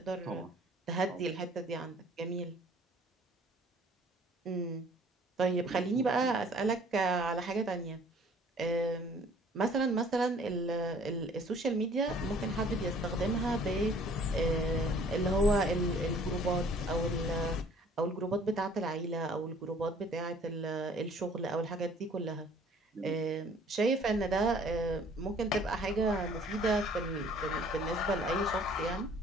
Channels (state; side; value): normal; both; correlation 0.55